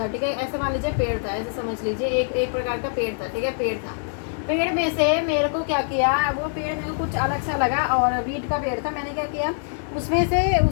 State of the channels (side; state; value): right; silent; digital silence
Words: ठीक है, ऐसे मान लीजिए पेड़ था, ऐसे समझ लीजिए एक प्रकार का पेड़ था, ठीक है, पेड़ में से मेरे को क्या किया, वो पेड़ मेरे को कुछ अलग सा लगा और वीट का पेड़ था, मैंने क्या किया, उसमें से